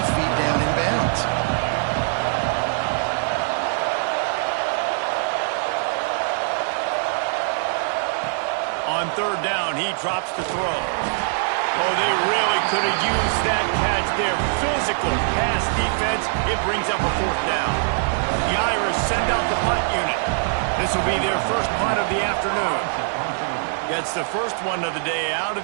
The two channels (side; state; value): left; silent; 64 dB below the other